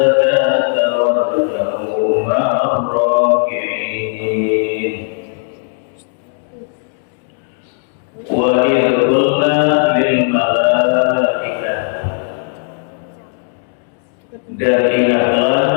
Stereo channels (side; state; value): right; silent; digital silence